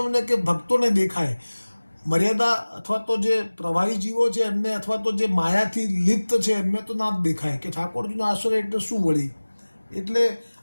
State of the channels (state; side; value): inverted; both; correlation -1.00